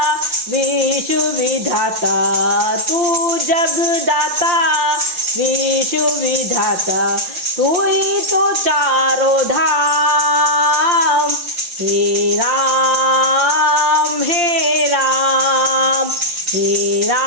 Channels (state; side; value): late; left; 5.7 ms